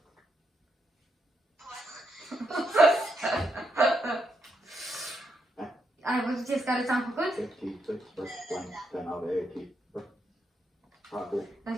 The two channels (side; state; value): both; normal; correlation 0.80